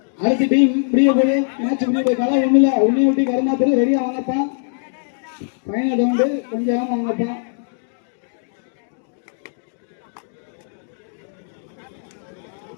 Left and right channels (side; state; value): right; silent; digital silence